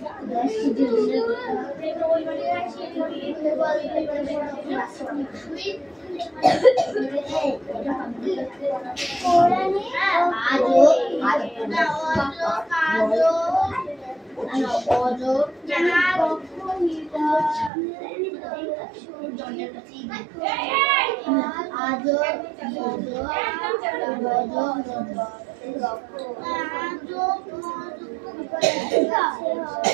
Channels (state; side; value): drops out; left; at 17.7 s